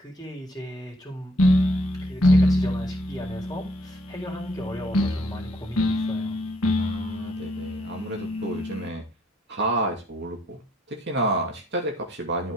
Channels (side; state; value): both; normal; correlation 0.68